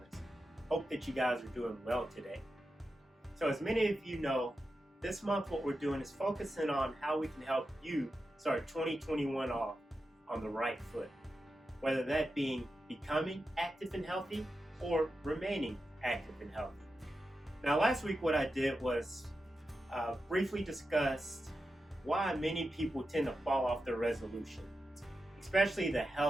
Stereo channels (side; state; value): both; normal; correlation 0.90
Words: Hope that you guys are doing well today. So as many of you know, this month what we're doing is focusing on how we can help you start 2021 off on the right foot. Whether that being becoming active and healthy or remaining active and healthy. Now last week what I did was briefly discuss why many people tend to fall off their resolutions, especially the